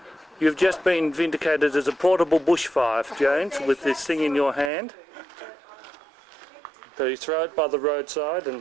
you've just been vindicated as a portable bushfire, James, with this thing in your hand. So you throw it by the roadside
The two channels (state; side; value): drops out; left; at 4.7 s